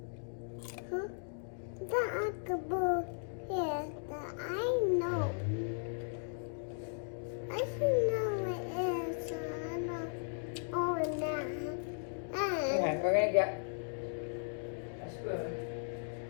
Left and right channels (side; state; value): right; silent; digital silence